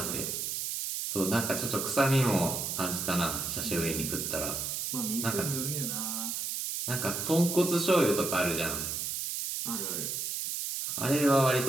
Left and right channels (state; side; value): noise; right; hiss, 2 dB below the sound